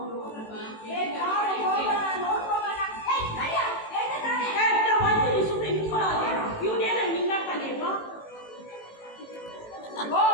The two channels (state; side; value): late; right; 18 ms